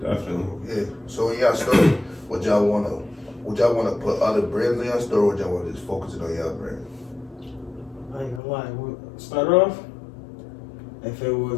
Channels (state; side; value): drops out; right; at 8.4 s